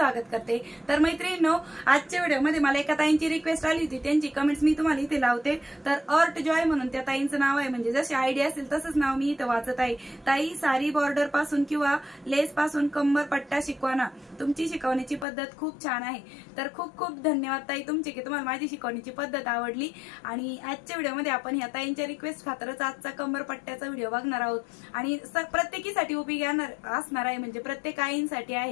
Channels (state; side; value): drops out; right; at 15.2 s